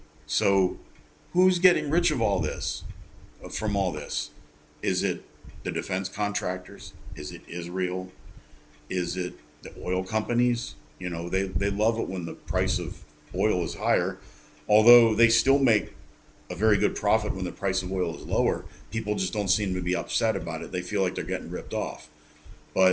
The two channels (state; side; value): identical; both; correlation 1.00